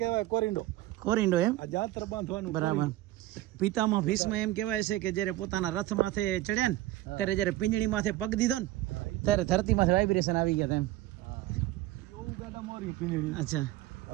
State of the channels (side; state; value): left; quieter; 16.1 dB